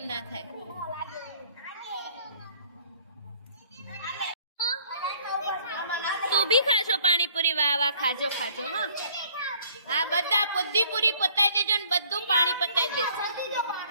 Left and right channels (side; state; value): both; inverted; correlation -0.58